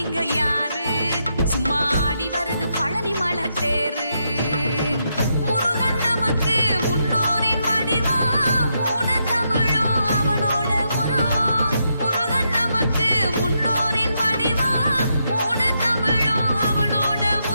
இங்க யாரு, சும்மா ஆடி வருது பழனிமலை தேரு. முருகன் நமக்கு முன்னோரின் வடிவம், மூணு தமிழும் அவனோட உருவம். முருகன் நமக்கு முன்னோரின் வடிவம், மூணு தமிழும் அவனோட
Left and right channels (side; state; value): both; inverted; correlation -0.80